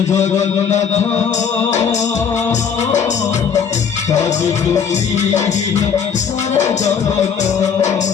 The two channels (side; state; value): right; quieter; 7.0 dB